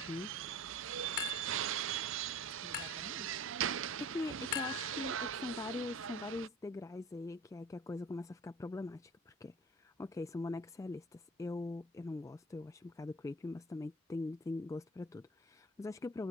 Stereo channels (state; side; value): normal; both; correlation 0.41